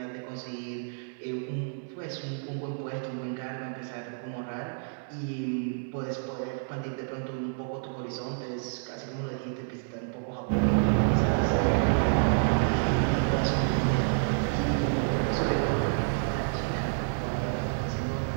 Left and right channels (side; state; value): left; silent; digital silence